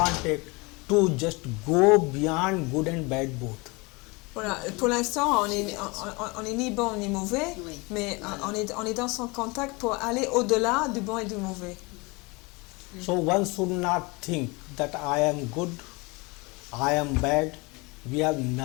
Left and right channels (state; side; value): quieter; right; 26.5 dB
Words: to just go beyond good and bad both. Voilà, pour l'instant, on est ni bon ni mauvais, Oui. mais on est dans son contact pour aller au-delà du bon et du mauvais. So one should not think that I am good, I am bad. We have